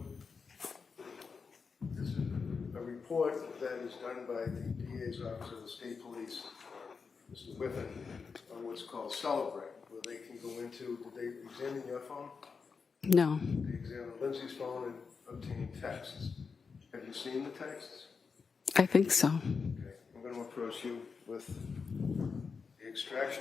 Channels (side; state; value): right; quieter; 5.3 dB